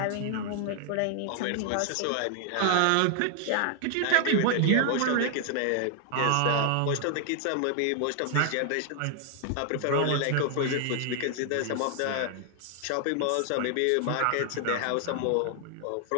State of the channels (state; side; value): different; both; correlation 0.00